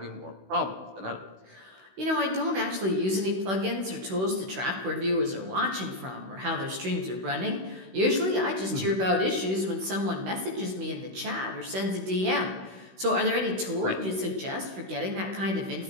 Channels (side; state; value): left; late; 16 ms